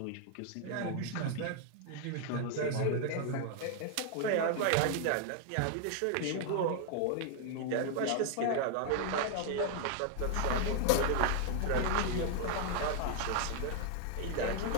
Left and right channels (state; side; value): different; both; correlation 0.00